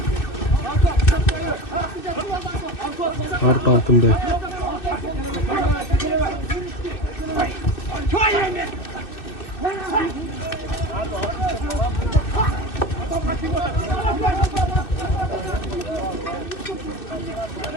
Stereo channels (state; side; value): late; right; 2.5 ms